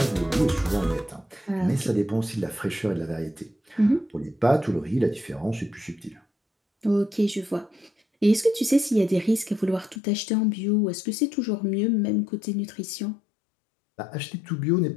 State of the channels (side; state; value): right; drops out; at 10.0 s